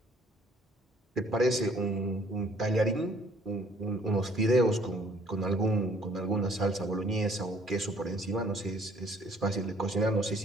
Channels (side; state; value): both; normal; correlation 0.60